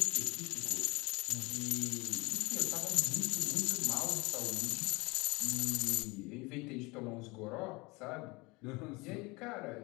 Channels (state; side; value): quieter; right; 25.2 dB